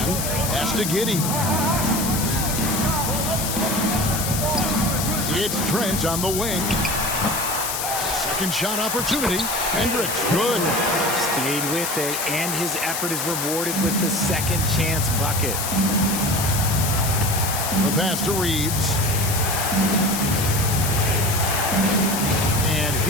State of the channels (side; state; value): left; noise; hiss, 2 dB below the sound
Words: Pass to Giddey. It's Trent on the wing. Second shot opportunity. Hendricks, good. Stayed with it, and his effort is rewarded with the second chance bucket. The pass to Reeves. And